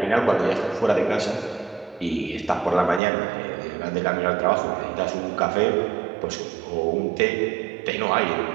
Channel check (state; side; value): drops out; left; at 3.0 s